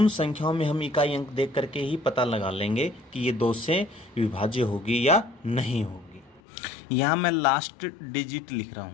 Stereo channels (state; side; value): drops out; right; at 6.4 s